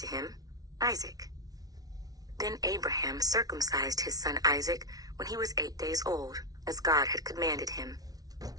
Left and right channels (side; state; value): left; late; 0.18 ms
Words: him, Isaac. Then Abraham circumcised his son Isaac when he was 8 days old, as God had commanded him.